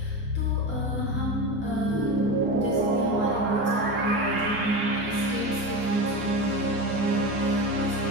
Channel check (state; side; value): normal; both; correlation 0.23